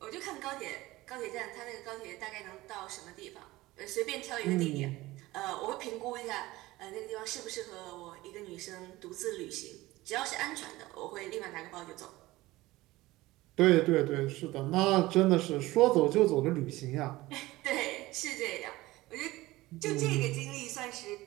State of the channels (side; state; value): left; quieter; 18.7 dB